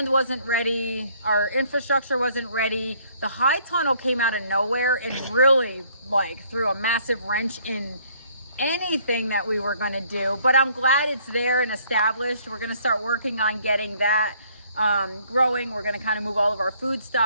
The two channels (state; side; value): inverted; both; correlation -0.63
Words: wasn't ready, our infrastructure wasn't ready. The high tunnel came out of nowhere and really threw a massive wrench in anything that we were going to do, but I'm glad it's there and established. We're going to start working on getting that growing. We're going to kind of move all of our food